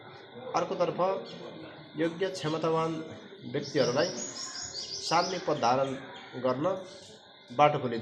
अर्कोतर्फ योग्य क्षमतावान व्यक्तिहरूलाई सार्वजनिक पद धारण गर्न बाटो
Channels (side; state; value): both; identical; correlation 1.00